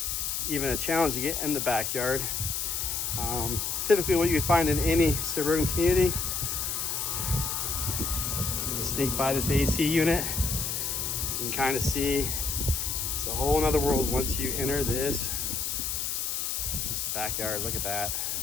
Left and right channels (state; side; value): noise; left; hiss, 1 dB below the sound